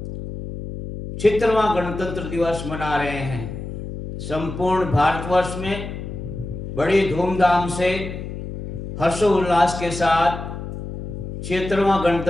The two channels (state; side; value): noise; left; hum, 8 dB below the sound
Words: 76वां गणतंत्र दिवस मना रहे हैं। संपूर्ण भारतवर्ष में बड़ी धूमधाम से हर्षोल्लास के साथ 76वां